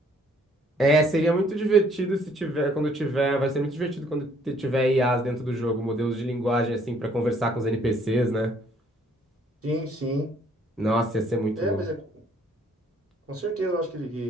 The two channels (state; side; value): normal; both; correlation 0.63